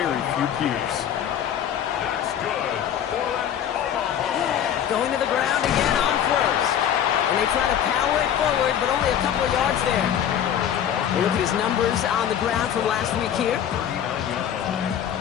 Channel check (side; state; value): right; quieter; 9.6 dB